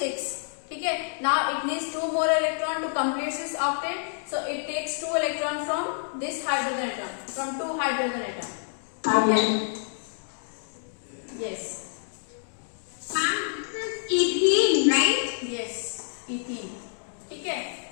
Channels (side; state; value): right; silent; digital silence